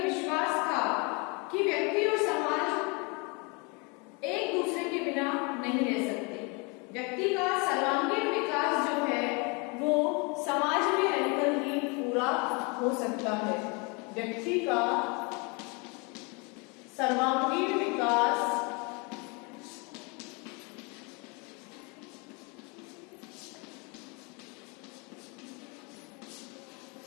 विश्वास था कि व्यक्ति और समाज एक दूसरे के बिना नहीं रह सकते। व्यक्ति का सर्वांगीण विकास जो है वो समाज में रहकर ही पूरा हो सकता है। व्यक्ति का सर्वांगीण विकास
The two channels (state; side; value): quieter; right; 30.9 dB